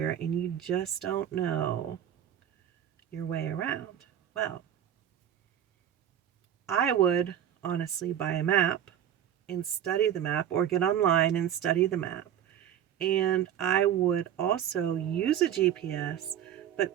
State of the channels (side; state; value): left; quieter; 10.3 dB